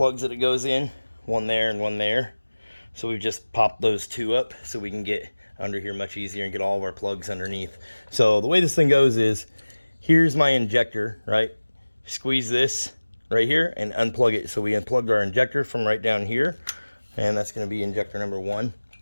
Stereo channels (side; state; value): both; inverted; correlation -1.00